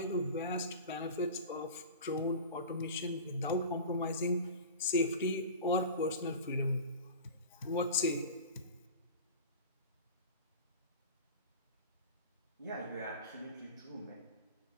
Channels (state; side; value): inverted; both; correlation -0.34